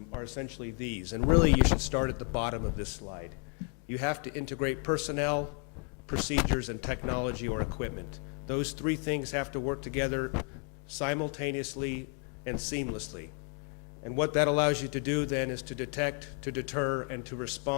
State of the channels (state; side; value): quieter; right; 37.8 dB